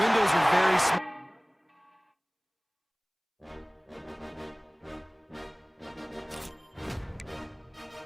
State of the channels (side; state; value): both; identical; correlation 1.00